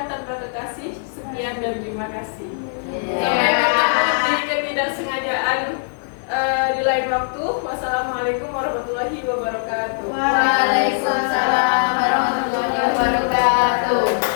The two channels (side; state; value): right; silent; digital silence